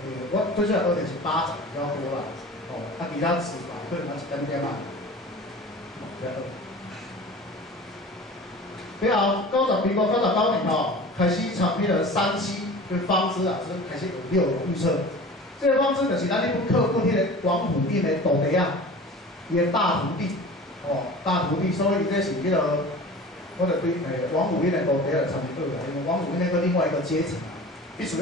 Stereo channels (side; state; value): both; normal; correlation 0.39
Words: 我最主要学的是8仔比较多啦，哦，其他词法可能一点点嘛，了后民国99年吼，开始参迄个37跟方知老师开始有6种预测。这个方知就是咱迄本课本迄个王府印的徒弟啊，伊的大徒弟，哦，大徒弟，所以这是迄个，我就对王府印的徒弟来参与啦，因为王府印那个另外一个阶层。必须